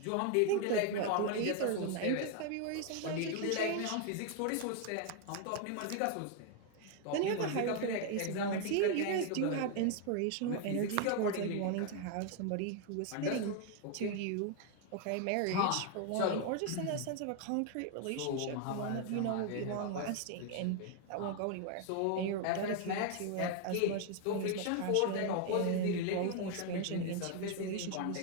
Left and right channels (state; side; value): different; both; correlation 0.01